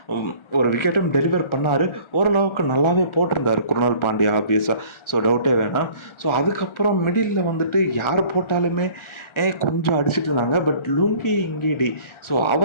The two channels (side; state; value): right; late; 1.4 ms